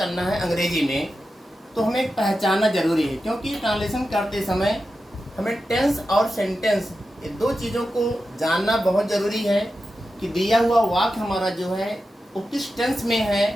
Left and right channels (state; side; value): normal; both; correlation 0.91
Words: है अंग्रेजी में, तो हमें पहचानना जरूरी है। क्योंकि ट्रांसलेशन करते समय हमें टेंस और सेंटेंस ये दो चीज़ों को जानना बहुत ज़रूरी है कि दिया हुआ वाक्य हमारा जो है वो किस टेंस में